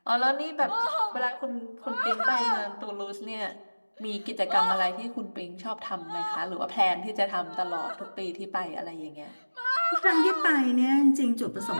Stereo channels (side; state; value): both; inverted; correlation -1.00